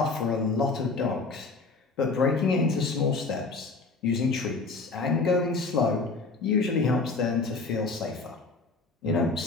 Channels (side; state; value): right; quieter; 3.9 dB